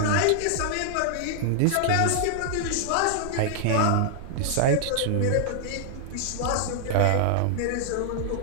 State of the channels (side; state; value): both; different; correlation -0.01